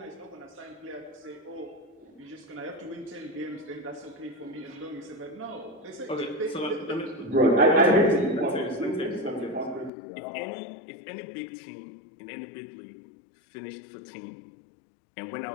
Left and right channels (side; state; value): right; drops out; at 9.9 s